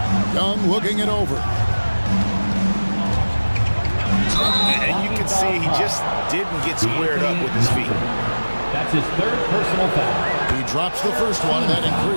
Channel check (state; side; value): inverted; both; correlation -1.00